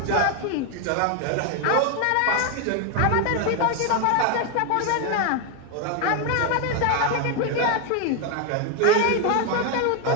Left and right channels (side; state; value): both; different; correlation 0.01